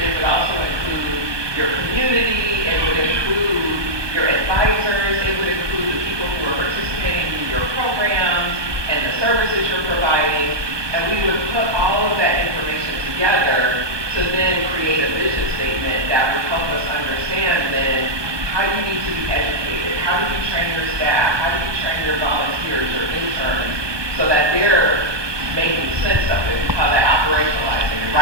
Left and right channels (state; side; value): late; left; 1.2 ms